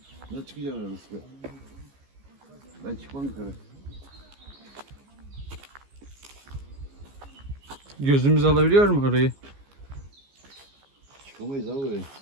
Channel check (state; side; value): late; left; 15 ms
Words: Ne çıkacağım arası be? Ben çıkmam yukarı. Gözümüz alabiliyor mu orayı? Çıkamayız abi buraya.